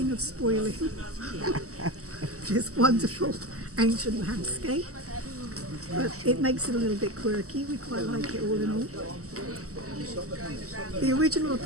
of spoiling this wonderful ancient landscape. But it makes it a little bit quirky. We quite like it all in all. The original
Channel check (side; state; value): left; late; 0.65 ms